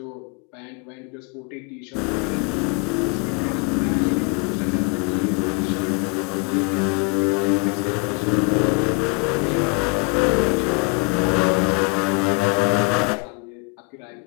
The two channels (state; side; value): quieter; right; 31.9 dB